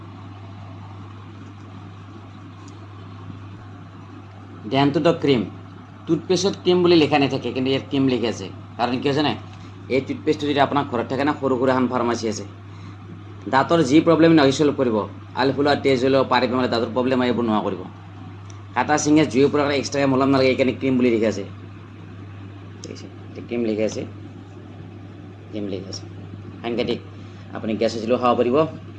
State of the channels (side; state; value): both; identical; correlation 1.00